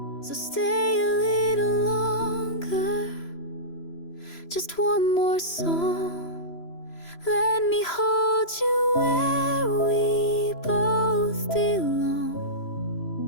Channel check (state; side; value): late; right; 3.0 ms